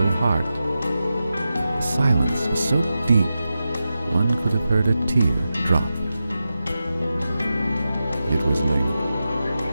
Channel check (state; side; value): inverted; both; correlation -0.91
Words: heart. The silence was so deep, one could have heard a tear drop. It was Ling.